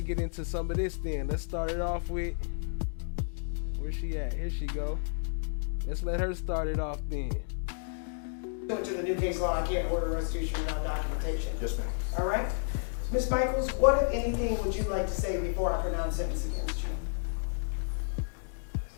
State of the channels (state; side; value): silent; right; digital silence